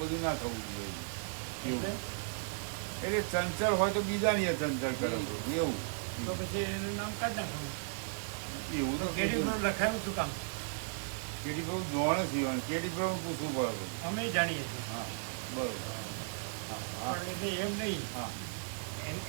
બધું ના થવું જોઈએ એટલે? એવું. એટલે ચંચળ હોય તો બીજાની એ ચંચળ કરે એવું તો પછી એનું નામ કાઢ નાખવાનું. એવું તો તો કેડી પ્રભુ લખાયું શું કામ? કેડી પ્રભુ જોવાનું સીવાનું કેડી પ્રભુ પૂછવું પડે. અમે જાણીએ છીએ હા બરોબર. હા પણ એટલે એમ નહીં. હા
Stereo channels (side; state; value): left; silent; 54 dB below the other